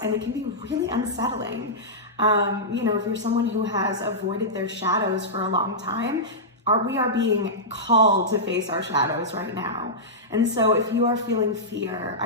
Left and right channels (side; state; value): both; normal; correlation -0.13